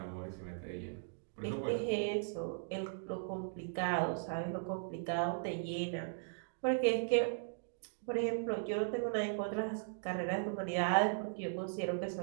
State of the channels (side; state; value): left; silent; digital silence